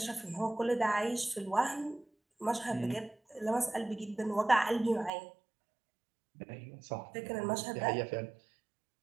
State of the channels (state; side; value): drops out; left; at 5.1 s